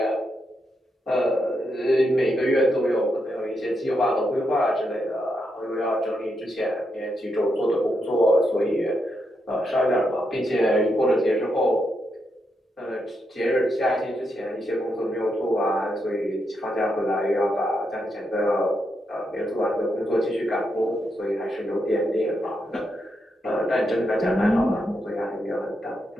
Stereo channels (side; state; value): both; normal; correlation 0.82